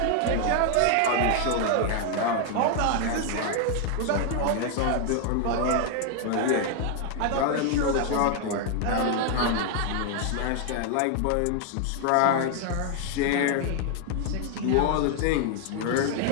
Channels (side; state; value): both; different; correlation 0.00